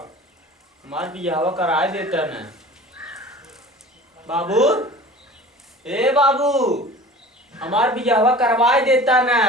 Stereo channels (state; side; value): normal; both; correlation 0.41